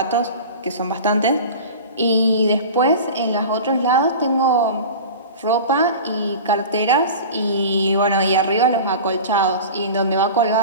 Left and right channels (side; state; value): both; inverted; correlation -0.35